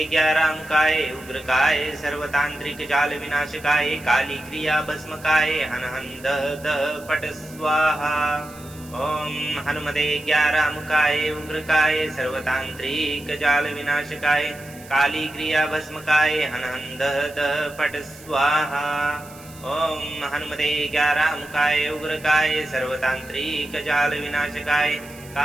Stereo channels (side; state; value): right; noise; hiss, 21 dB below the sound